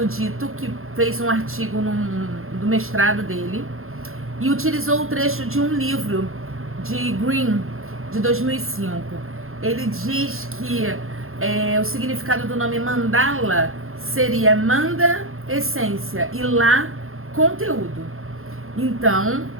Dito, que fez um artigo do mestrado dele, e utilizou o trecho de um livro de Green, de 2005. Ele diz que o significado do nome mandala seria manda, essência, e lá, conteúdo. Então,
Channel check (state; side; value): late; left; 0.61 ms